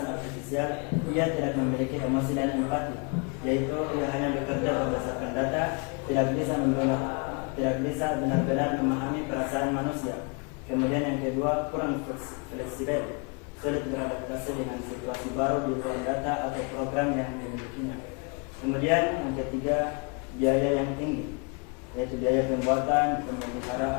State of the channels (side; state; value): right; quieter; 33.7 dB